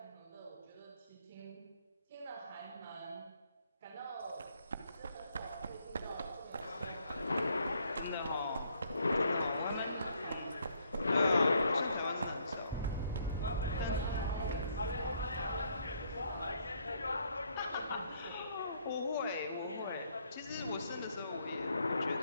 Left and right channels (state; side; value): inverted; both; correlation -0.69